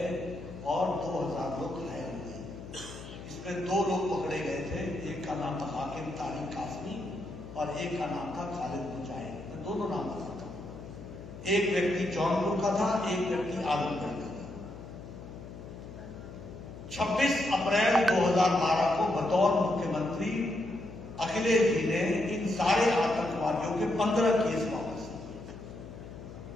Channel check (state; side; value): noise; left; hum, 13 dB below the sound